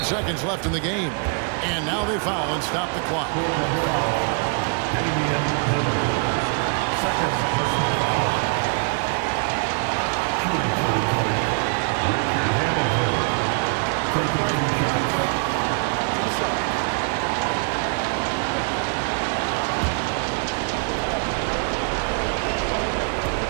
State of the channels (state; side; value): quieter; left; 37.2 dB